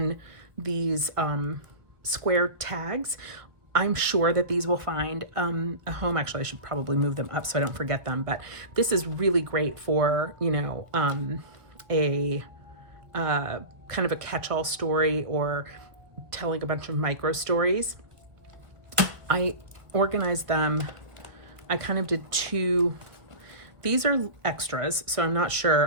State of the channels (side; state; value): left; late; 1.2 ms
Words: these square tags. I'm sure that these will find a home. Actually, I should probably move them up so I don't forget them. But this is really great for, a kind of a catch-all story or telling a bunch of micro stories. I organized them. I kind of did two. These are extras, so I'm not